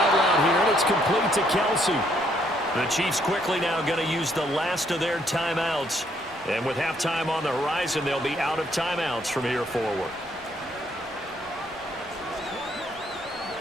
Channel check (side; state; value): both; normal; correlation 0.69